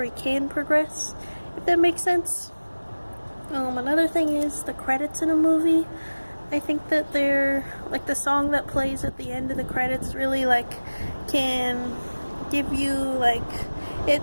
can progress, if that makes sense. Another thing is the credits in a movie. I think that they're like the song that plays at the end of the credits really like can give you like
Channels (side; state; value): both; inverted; correlation -1.00